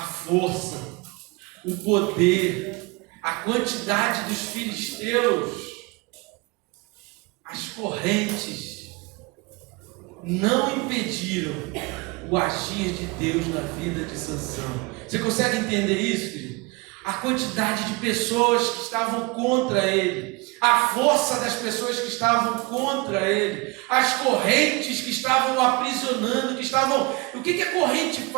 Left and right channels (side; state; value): left; quieter; 26.3 dB